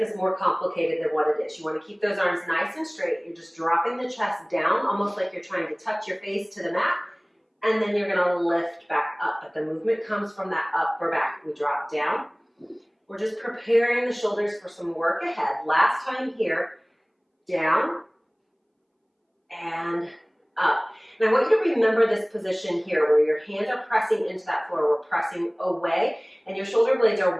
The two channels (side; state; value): both; identical; correlation 1.00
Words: more complicated than what it is. You want to keep those arms nice and straight. You're just dropping the chest down, almost like you're trying to touch your face to the mat. And then you're going to lift back up. But the movement comes from that upper back. We drop down. We're just preparing the shoulders for some work ahead. Last time here, down and up. And I want you to remember this position here where your hands are pressing into that floor. We're pressing away and your shoulder blades